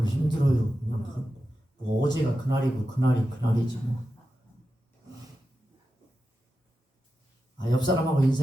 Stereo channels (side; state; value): both; normal; correlation 0.91